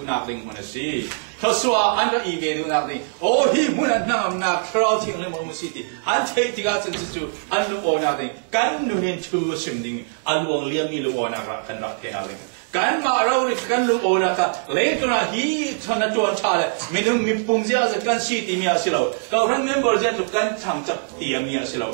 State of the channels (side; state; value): left; silent; digital silence